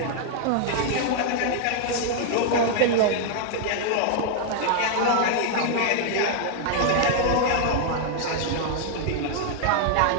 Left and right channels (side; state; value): both; different; correlation 0.00